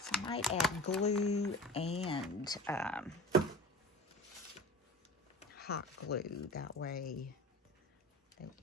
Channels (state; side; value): normal; both; correlation 0.37